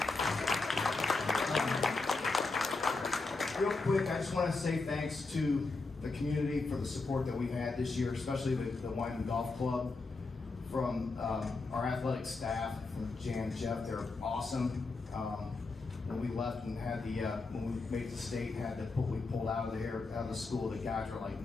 Real quick, I just want to say thanks to the community for the support that we've had this year, especially with the Wyman Golf Club. From our athletic staff, from Jan and Jeff, they're awesome. When we left and had the, when we made the state, had the we pulled out of the school, the guys were like,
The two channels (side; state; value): right; quieter; 3.8 dB